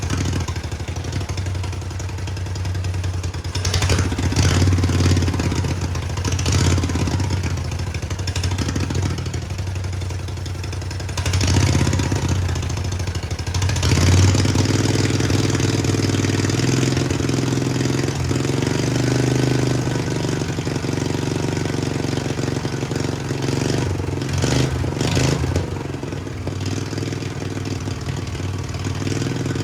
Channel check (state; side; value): identical; both; correlation 1.00